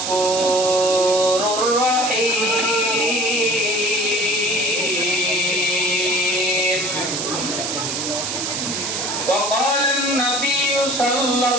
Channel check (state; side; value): noise; right; hiss, 2 dB below the sound